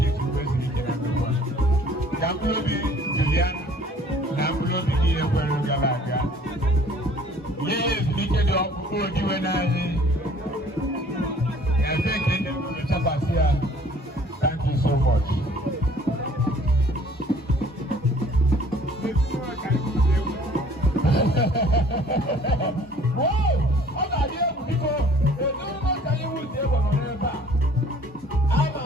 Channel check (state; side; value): normal; both; correlation 0.54